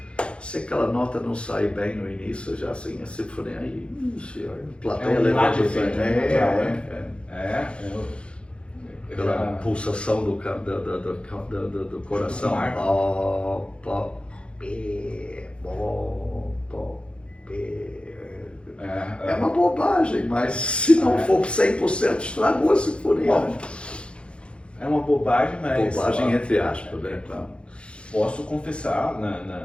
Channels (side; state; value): right; late; 0.057 ms